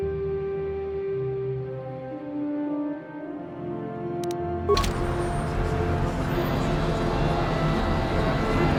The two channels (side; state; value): both; identical; correlation 1.00